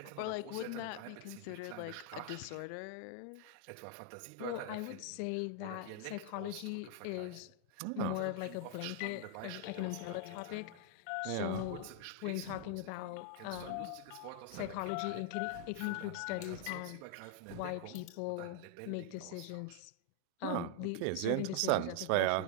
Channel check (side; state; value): both; different; correlation 0.00